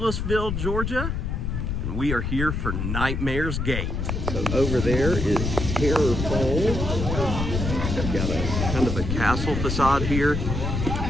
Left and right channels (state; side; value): noise; left; rumble, 2 dB below the sound